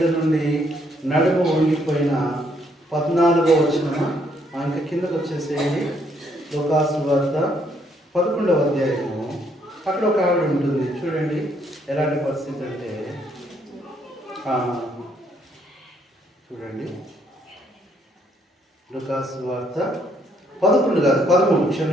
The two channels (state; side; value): normal; both; correlation 0.70